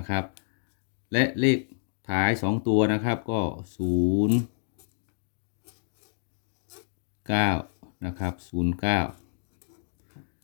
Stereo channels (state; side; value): silent; right; digital silence